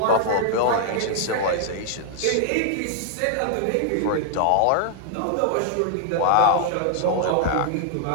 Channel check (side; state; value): both; different; correlation 0.00